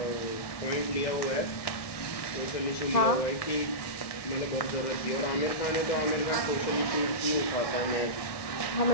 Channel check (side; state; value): right; late; 1.6 ms